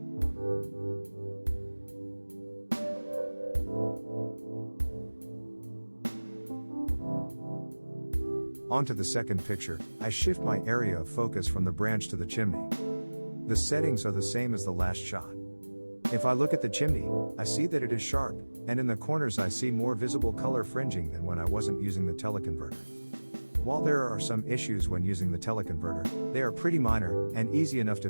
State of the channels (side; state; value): both; inverted; correlation -1.00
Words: On to the second picture, I shift my area of focus from the branch to the chimney. The settings are the same as the last shot. If I look at the chimney, I see that it is sharp, and in the corners I see more visible color fringing than when I wasn't using the teleconverter. While there are some issues when using the teleconverter, they are pretty minor, and easy enough to